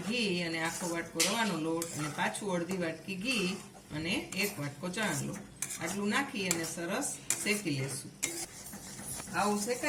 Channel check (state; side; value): identical; both; correlation 1.00